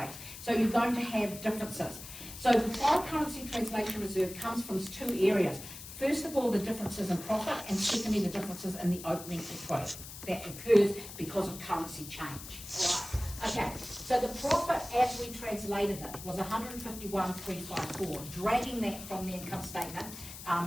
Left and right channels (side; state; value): left; noise; hiss, 12 dB below the sound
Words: So you're going to have differences. So the foreign currency translation reserve comes from two areas. First of all, the differences in profit, and secondly, the differences in the opening equity that occurs because of currency change. All right. Okay, so the profit as we translated it was 151,354, dragging that from the income statement,